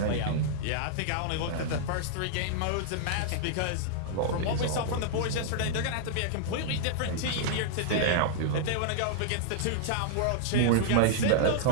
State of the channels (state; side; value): different; both; correlation -0.01